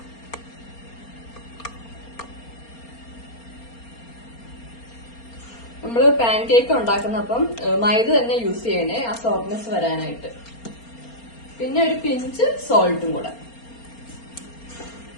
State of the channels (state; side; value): late; right; 4.3 ms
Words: നമ്മൾ പാൻ കേക്ക് ഉണ്ടാക്കുന്നപ്പം മൈദ തന്നെ യൂസ് ചെയ്യണേ, ആ സോഫ്റ്റ്നെസ് വരാനായിട്ട്. പിന്നെ ഒരു പിഞ്ച് സോൾട്ടും കൂടെ.